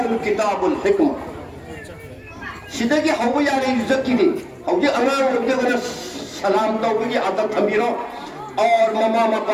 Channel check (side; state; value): both; identical; correlation 1.00